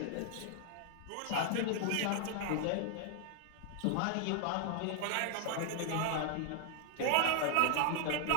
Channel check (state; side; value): different; both; correlation 0.00